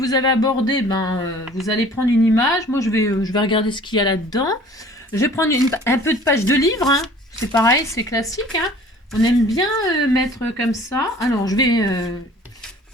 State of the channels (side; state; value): both; normal; correlation 0.49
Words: avez abordé, vous allez prendre une image. Moi, je vais regarder ce qu'il y a là-dedans. Je vais prendre un peu de page de livre. Hein. C'est pareil, c'est classique. Hein. On aime bien mettre comme ça. Alors, je vais